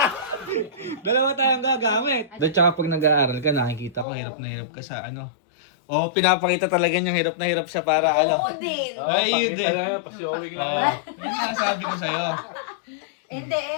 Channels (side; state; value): right; drops out; at 4.0 s